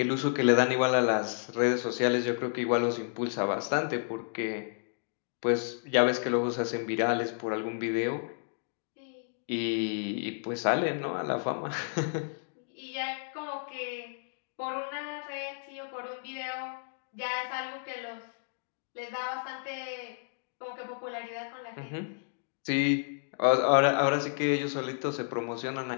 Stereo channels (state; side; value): silent; right; digital silence